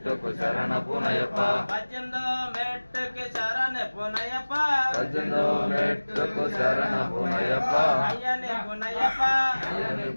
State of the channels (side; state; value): both; inverted; correlation -1.00